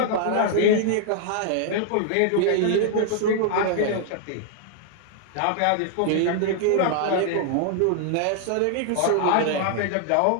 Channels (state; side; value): different; both; correlation 0.00